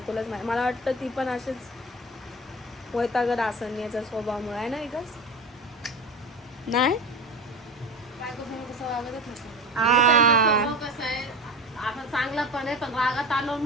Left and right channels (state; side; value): normal; both; correlation 0.30